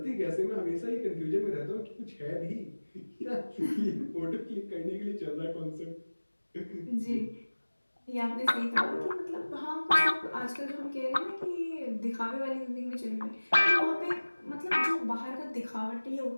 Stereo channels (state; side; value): inverted; both; correlation -1.00